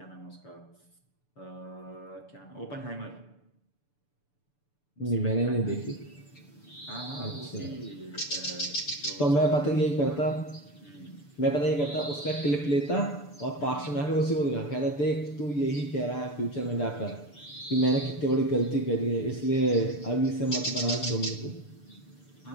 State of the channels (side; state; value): right; late; 6.9 ms